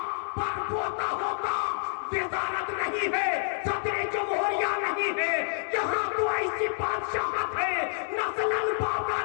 پر پوتا ہوتا، وزارت نہیں ہے، صدر جمہوریہ نہیں ہے، یہاں تو ایسی بادشاہت ہے، نسلن بابا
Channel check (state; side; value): silent; right; 58 dB below the other